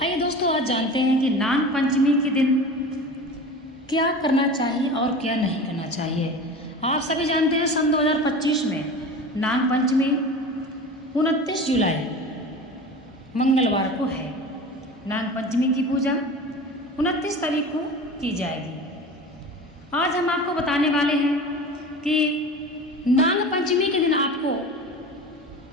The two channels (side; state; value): both; normal; correlation 0.34